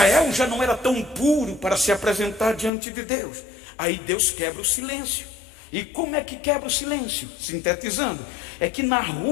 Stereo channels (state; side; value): drops out; right; at 2.7 s